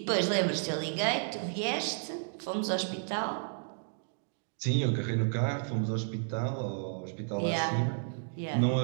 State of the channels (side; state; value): left; silent; digital silence